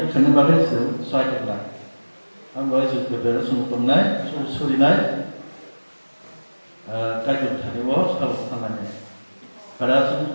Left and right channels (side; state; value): both; inverted; correlation -1.00